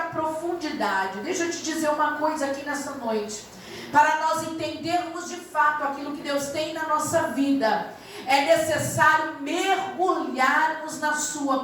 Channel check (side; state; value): both; identical; correlation 1.00